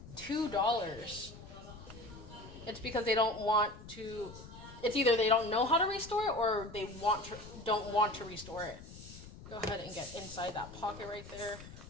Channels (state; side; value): noise; left; rumble, 15 dB below the sound